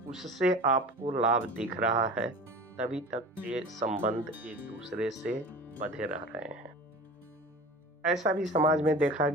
उससे आपको लाभ दिख रहा है, तभी तक ये संबंध एक दूसरे से बंधे रह रहे हैं। ऐसा भी समाज में देखा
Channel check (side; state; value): both; normal; correlation 0.37